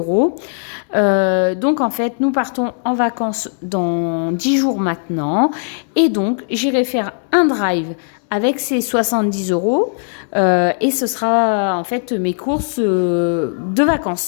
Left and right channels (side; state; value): right; silent; digital silence